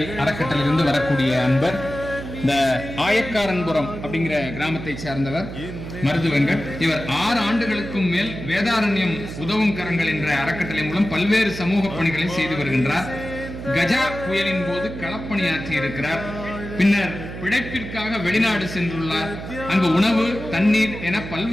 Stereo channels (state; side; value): noise; right; hum, 9 dB below the sound